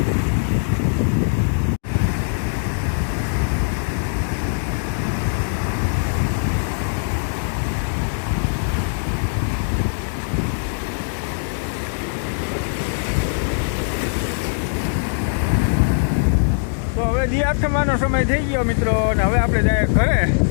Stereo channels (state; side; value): silent; right; digital silence